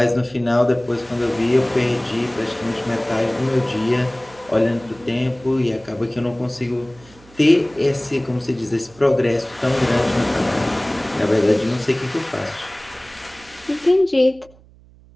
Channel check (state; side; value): noise; right; hum, 26 dB below the sound